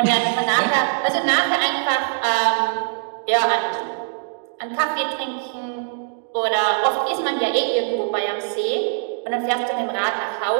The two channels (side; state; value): left; silent; digital silence